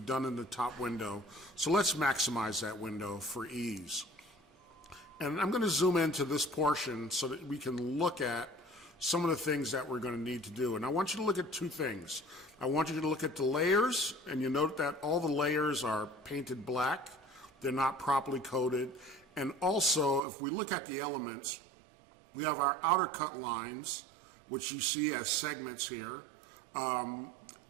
in the top window, so let's maximize that window for ease. And I'm going to zoom into this portion so that we can look at some of the things that we're going to need to do. And I want you to look at two things. I want you to look at the layers, and you note that all the layers are painted black. They're not properly coded. And also, if we look at the elements, we have our outer cut lines, which you see as segments here.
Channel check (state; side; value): drops out; left; at 20.2 s